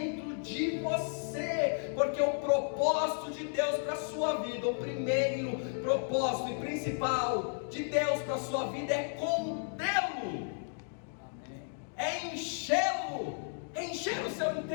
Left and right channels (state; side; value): silent; right; 56 dB below the other